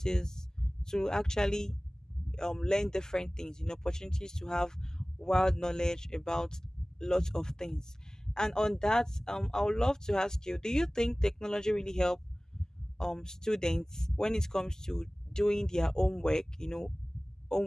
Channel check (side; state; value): both; normal; correlation 0.98